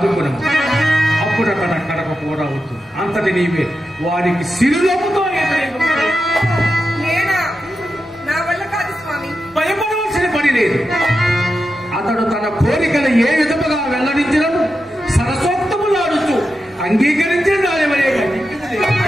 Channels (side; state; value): both; normal; correlation 0.89